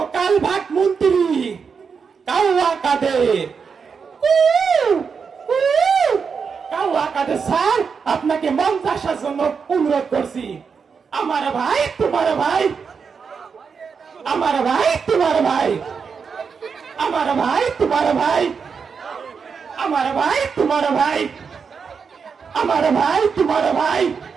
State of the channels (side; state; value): left; quieter; 5.9 dB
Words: কালভাট মন্ত্রী কাউয়া কাদের। কাউয়া কাদের স্যার, আপনাকে মঞ্চে আসার জন্য অনুরোধ করছি। আমার ভাই তোমার ভাই, আমার ভাই তোমার ভাই, আমার ভাই তোমার ভাই, আমার ভাই তোমার ভাই, আমার ভাই তোমার ভাই,